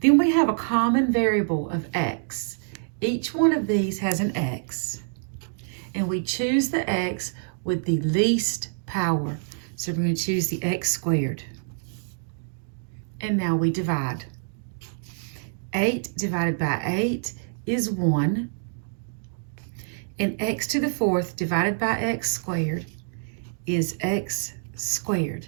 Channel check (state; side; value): silent; left; digital silence